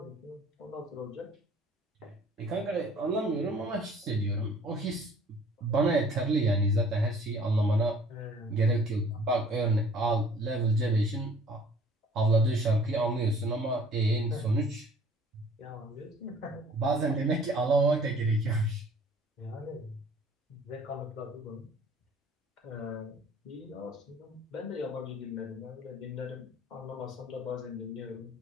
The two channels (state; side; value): normal; both; correlation 0.53